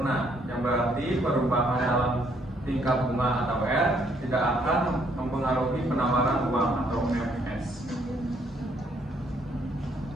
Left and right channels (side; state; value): both; normal; correlation 0.68